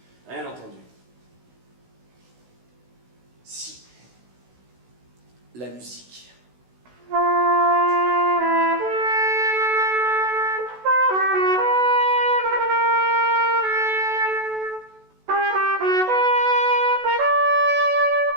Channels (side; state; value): left; late; 16 ms